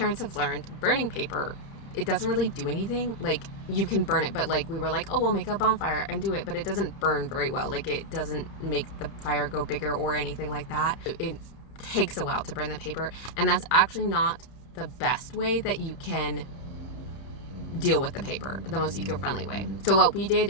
have learned, burning paper, it doesn't really do anything. Like, you can burn it, but like we were like, oh, we'll make a bonfire and do it, but it doesn't burn very well. Like, it doesn't make the fire go bigger or anything like that. It takes a while to burn the paper, and that's actually not the best way that you can deal with the paper, the most eco-friendly way. So what we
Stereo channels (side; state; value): right; late; 30 ms